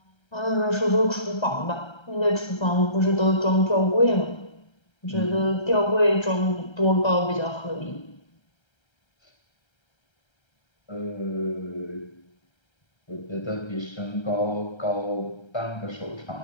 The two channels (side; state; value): right; late; 1.3 ms